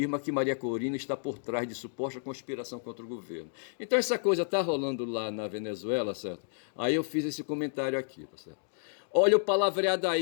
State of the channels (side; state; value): right; silent; digital silence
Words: que Maria Corina está por trás de suposta conspiração contra o governo. Então essa coisa está rolando lá na Venezuela, certo? Aí eu fiz esse comentário aqui, tá certo? Olha o palavreado